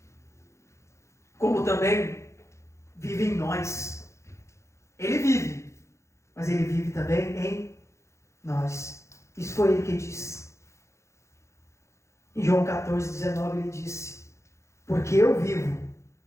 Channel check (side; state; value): right; late; 0.14 ms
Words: como também vive em nós. Ele vive, mas Ele vive também em nós. Isso foi Ele que disse. Em João 14:19 Ele disse: porque eu vivo,